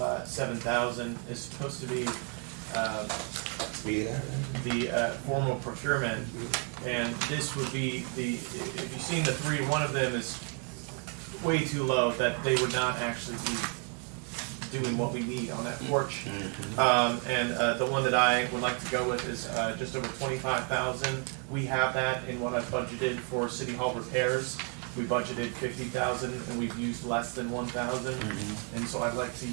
7,000 is supposed to be the formal procurement, and this would be if you've seen the 3, one of them is way too low, that they would not actually be doing what we need on that porch. And the one that I would like to go with is just over 25,000. We have that in what I've budgeted for City Hall repairs. We budgeted 50,000 and we've used less than 1,000. And so I'd like to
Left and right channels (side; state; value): left; quieter; 39.8 dB